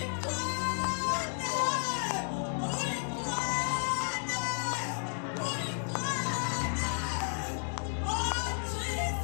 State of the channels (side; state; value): right; silent; digital silence